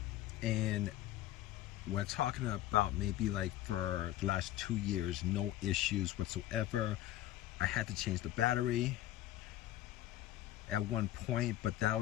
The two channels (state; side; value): quieter; right; 14.3 dB